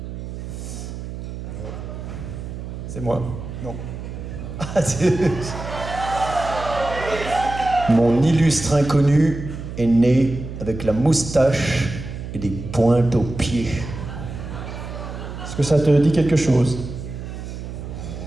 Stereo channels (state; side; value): noise; right; hum, 9 dB below the sound